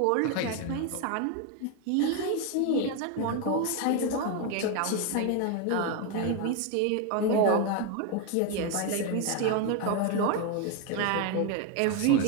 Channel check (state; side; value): different; both; correlation 0.02